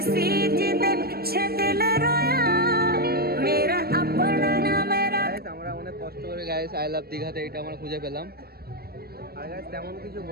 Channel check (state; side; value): late; left; 0.45 ms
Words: सी जिदे पीछे दिल रोया मेरा अपना ना मेरा আমরা অনেক কষ্ট করে গাইস আই লাভ দীঘাতে এটা আমরা খুঁজে পেলাম আর গাইস তেমন কিছু